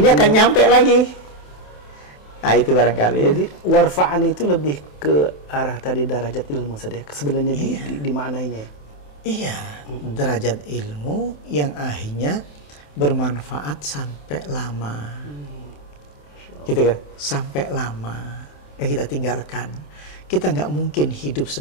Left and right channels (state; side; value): late; right; 27 ms